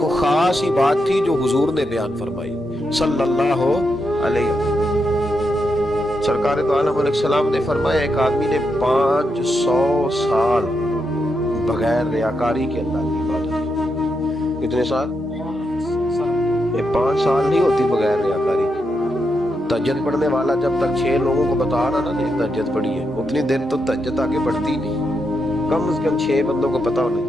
خاص ہی بات تھی جو حضور نے بیان فرمائی صلی اللہ علیہ وسلم۔ سرکار دو عالم علیہ السلام نے فرمایا ایک آدمی نے 500 سال بغیر ریاکاری کے اللہ کی عبادت کی۔ کتنے سال؟ یہ 5 سال نہیں ہوتی بغیر ریاکاری کی۔ تہجد پڑھنے والا جب تک 6 لوگوں کو بتا رہا نا نہیں تہجد پڑھی ہے، اتنی دیر تو تہجد آگے بڑھتی نہیں، کم از کم 6 بندوں کو پتا ہونا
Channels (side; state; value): both; normal; correlation 0.83